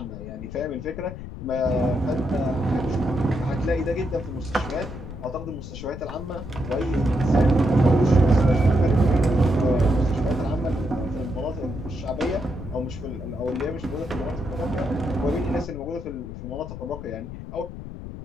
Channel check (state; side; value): noise; left; rumble, 10 dB below the sound